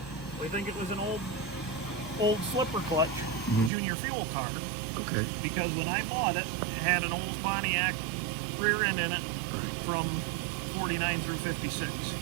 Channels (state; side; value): drops out; left; at 3.7 s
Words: we think it was an old slipper clutch junior fuel car, Okay. because when I bought it, it had an old Pontiac rear end in it from 49 through 56.